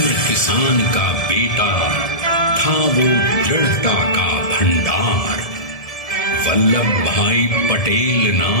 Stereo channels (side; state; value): right; late; 1.7 ms